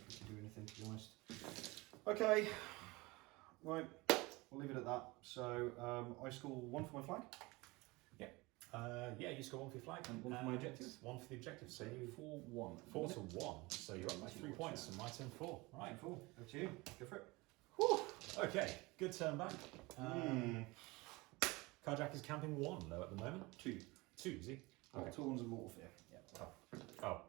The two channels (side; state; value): left; quieter; 23.3 dB